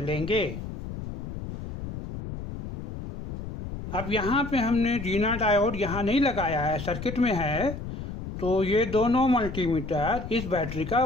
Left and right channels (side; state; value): left; noise; rumble, 8 dB below the sound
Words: अब यहाँ पे हमने जीना डायोड यहाँ नहीं लगाया है, सर्किट में है, तो ये दोनों मल्टीमीटर इस बैटरी का